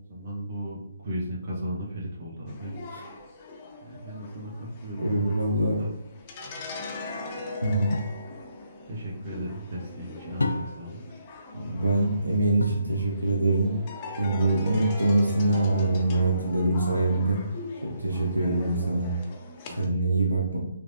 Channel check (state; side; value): inverted; both; correlation -0.74